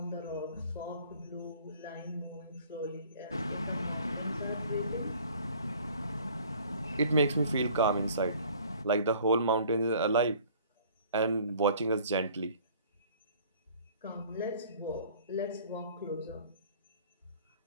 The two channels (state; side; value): inverted; both; correlation -0.52